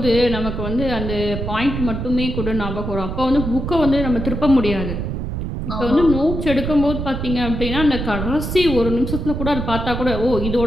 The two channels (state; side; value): noise; right; rumble, 4 dB below the sound